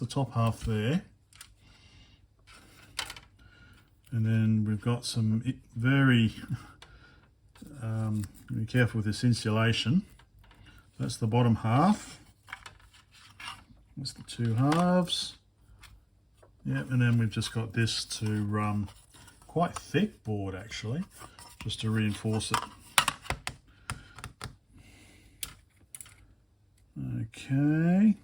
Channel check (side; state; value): both; identical; correlation 1.00